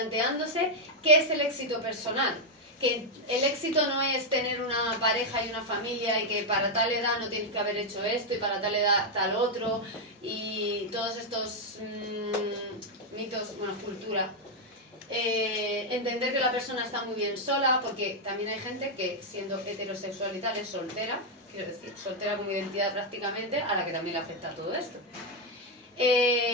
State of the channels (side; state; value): both; normal; correlation 0.01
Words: qué es el éxito personal. Que el éxito no es tener una pareja y una familia y que para tal edad no tienes que haber hecho esto y para tal edad tal otro y todos estos mitos, bueno, cultura. Entender que la persona está muy bien sola, porque también hay gente que siendo heterosexual y tal es soltera, quiero decir, soltera con identidad prácticamente, a la que también le afecta todo esto.